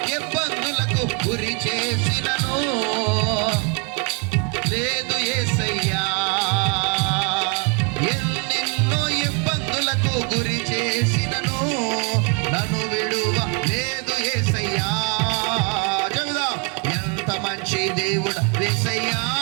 ఇబ్బందులకు గురి చేసినను, లేదు యేసయ్యా. ఎన్నెన్నో ఇబ్బందులకు గురి చేసినను, నన్ను విడువ లేదు యేసయ్యా. చెబుదాం, ఎంత మంచి దేవుడు యేసయ్యా,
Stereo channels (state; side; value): quieter; left; 34.1 dB